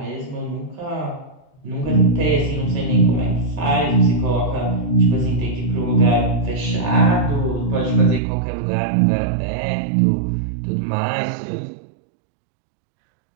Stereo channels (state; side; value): drops out; left; at 8.2 s